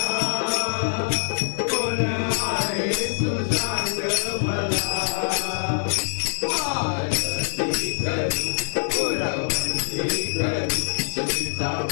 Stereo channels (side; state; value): right; silent; digital silence